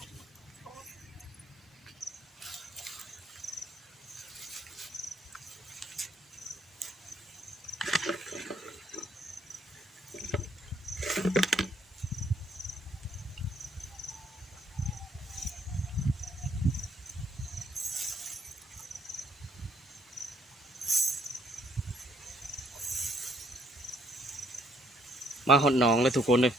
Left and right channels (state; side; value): normal; both; correlation 0.67